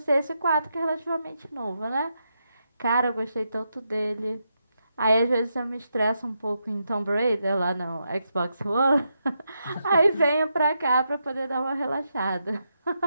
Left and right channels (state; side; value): inverted; both; correlation -0.84